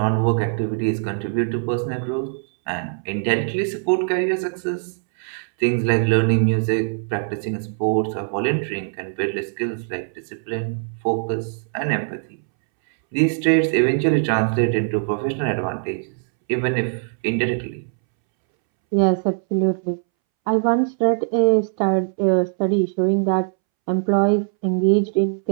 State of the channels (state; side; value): silent; left; 64 dB below the other